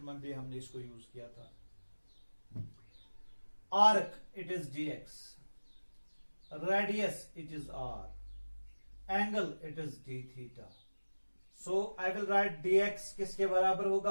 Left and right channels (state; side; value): inverted; both; correlation -1.00